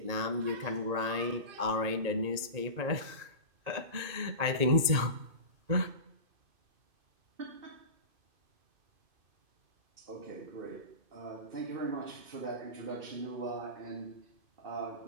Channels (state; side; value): late; left; 2.5 ms